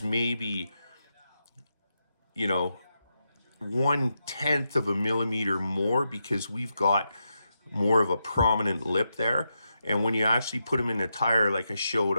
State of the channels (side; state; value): both; inverted; correlation -0.85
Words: maybe, you know, 1/10 of a millimeter more because we've got more of a prominent lip there. And when you actually put them in the tire, like I showed